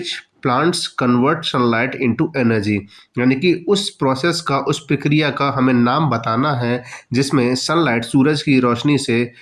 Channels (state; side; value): identical; both; correlation 1.00